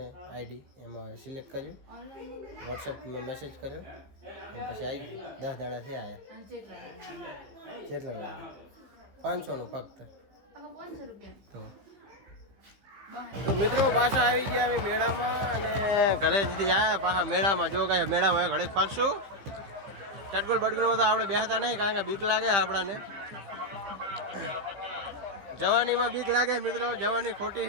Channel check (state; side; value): late; left; 15 ms